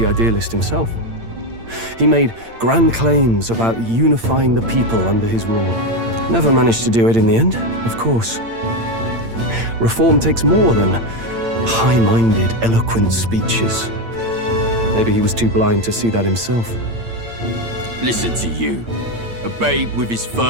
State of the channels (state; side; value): late; left; 8.8 ms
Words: idealist himself. He made grand claims about unifying the people under his rule. Never managed to do it in the end, of course. Reform takes more than high-minded, eloquent speeches. Maybe he was too blind to see that himself. Listen to you. A babe with his